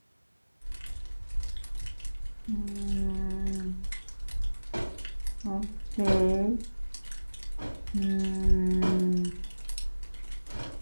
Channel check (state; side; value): inverted; both; correlation -1.00